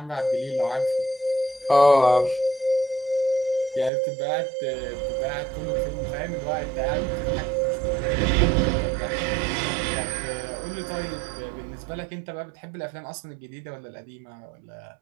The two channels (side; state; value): left; drops out; at 3.9 s